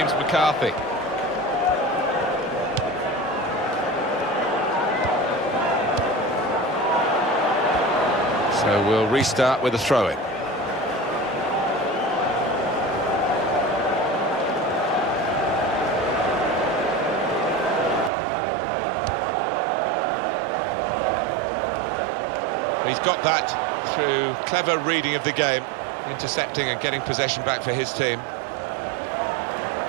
McCarthy. So we'll restart with a throw-in. He's got that through clever reading of the game, intercepting and getting possession back for his team.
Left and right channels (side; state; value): left; drops out; at 18.1 s